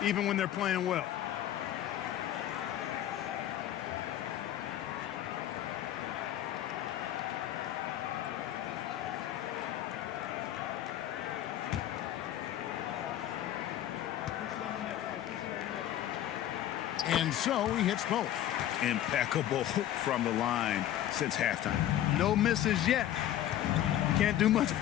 even when they're playing well. And so he hits both. Impeccable from the line since halftime. No misses yet. You can't do much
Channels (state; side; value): quieter; right; 12.2 dB